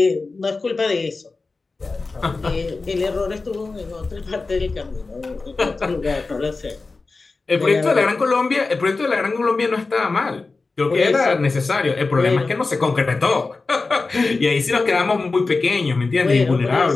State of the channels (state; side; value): quieter; right; 3.8 dB